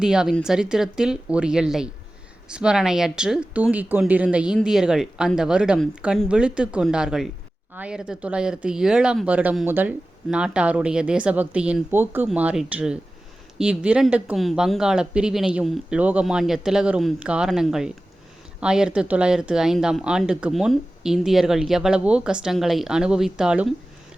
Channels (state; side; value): normal; both; correlation 0.96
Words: சரித்திரத்தில் ஒரு எல்லை. ஸ்மரணையற்று தூங்கிக் கொண்டிருந்த இந்தியர்கள் அந்த வருடம் கண் விழித்து கொண்டார்கள். 1907 முதல் நாட்டாருடைய தேசபக்தியின் போக்கு மாறிற்று. இவ்விரண்டுக்கும் வங்காள பிரிவினையும் லோகமான்ய திலகரும் காரணங்கள். 1905 முன் இந்தியர்கள் எவ்வளவோ கஷ்டங்களை அனுபவித்தாலும்